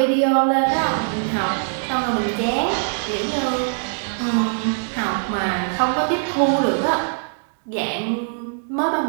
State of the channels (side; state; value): left; silent; digital silence